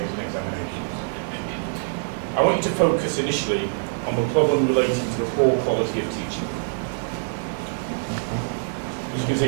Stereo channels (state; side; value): silent; left; digital silence